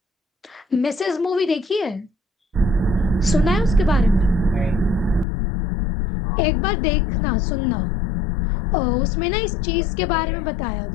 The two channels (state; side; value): drops out; right; at 5.2 s